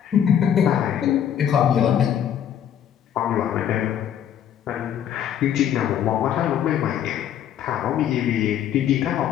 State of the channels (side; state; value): right; quieter; 9.7 dB